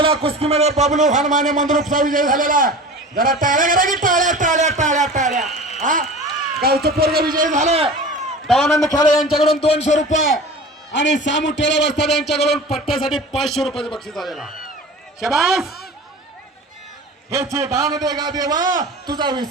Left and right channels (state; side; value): normal; both; correlation 0.37